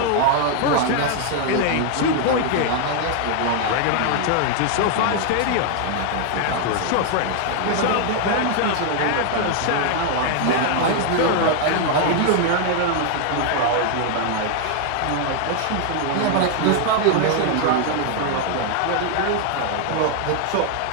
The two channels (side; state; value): both; different; correlation 0.00